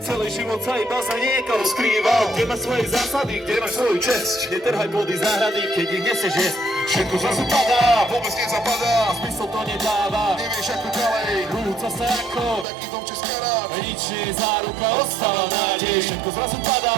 Celý život sa iba za niekoho skrýval. Kde máš svoje zásady, kde máš svoju česť. Netrhaj plody záhrady, keď ich nesieš jesť. Všetko zrazu padá, Vôbec nezapadá, zmysel to nedáva. nevieš ako ďalej. Rúca sa ako Taký domček z karát, nič nie je záruka, ostáva nádej. Všetko zrazu padá,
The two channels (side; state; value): left; drops out; at 12.7 s